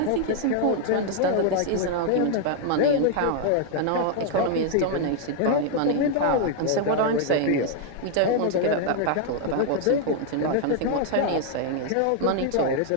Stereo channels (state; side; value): different; both; correlation 0.00